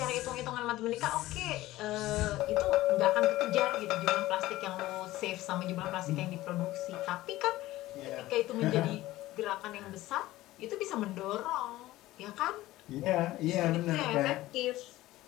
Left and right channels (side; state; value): right; quieter; 16.7 dB